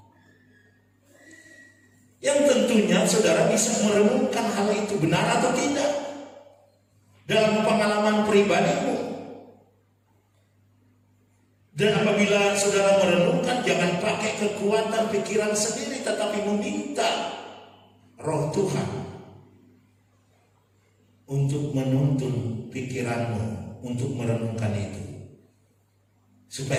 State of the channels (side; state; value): both; identical; correlation 1.00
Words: Yang tentunya saudara bisa merenungkan hal itu benar atau tidak dalam pengalaman pribadimu. Dan apabila saudara merenungkan, jangan pakai kekuatan pikiran sendiri, tetapi meminta Roh Tuhan untuk menuntun pikiranmu untuk merenungkan itu,